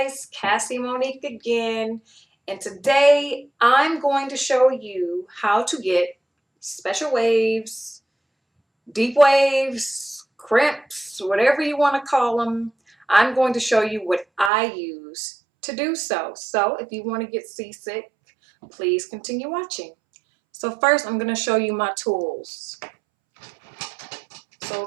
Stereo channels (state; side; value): drops out; left; at 14.5 s